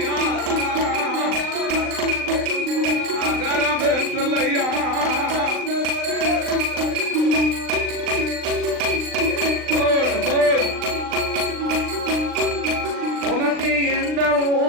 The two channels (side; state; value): left; late; 39 ms